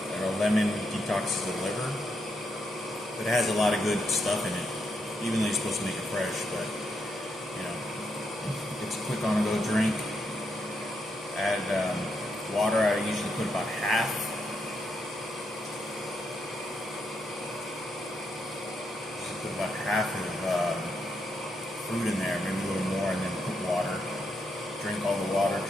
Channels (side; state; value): both; normal; correlation 0.80